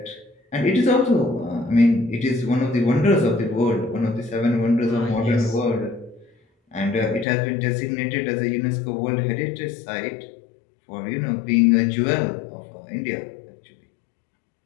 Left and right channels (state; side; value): drops out; right; at 7.2 s